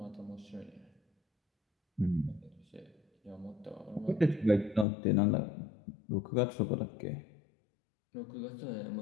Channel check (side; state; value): right; drops out; at 4.9 s